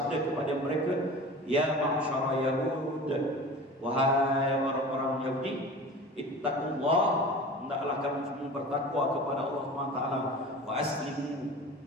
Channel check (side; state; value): both; normal; correlation 0.36